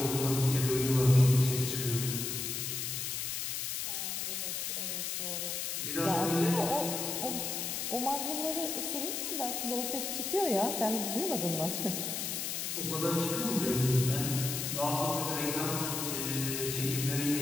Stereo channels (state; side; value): noise; left; hiss, 2 dB below the sound